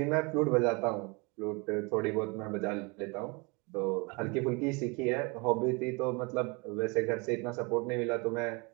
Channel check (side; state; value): left; quieter; 29.0 dB